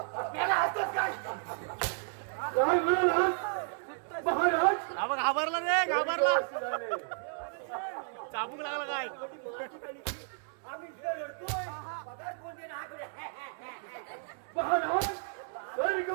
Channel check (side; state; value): left; silent; 56 dB below the other